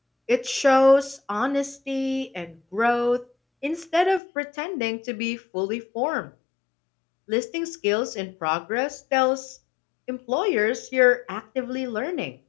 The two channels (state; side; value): drops out; right; at 4.2 s